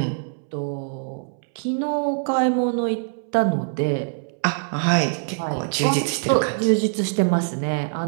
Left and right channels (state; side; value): silent; left; 63 dB below the other